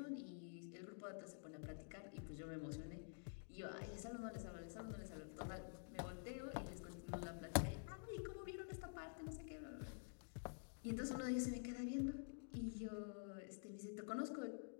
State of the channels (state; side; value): silent; right; digital silence